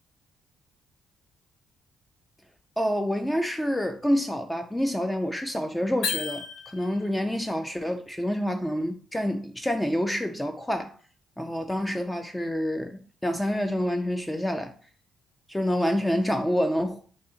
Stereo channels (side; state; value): both; normal; correlation 0.94